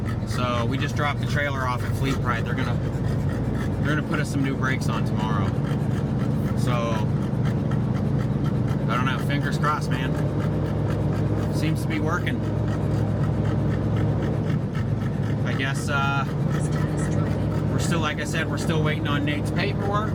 So we just dropped the trailer off at Fleet Pride. They're gonna put us some new brakes on tomorrow. So I don't know, fingers crossed, man. Seems to be working. I guess we're still, like I said, we're still waiting on Nate's paperwork.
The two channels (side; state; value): both; identical; correlation 1.00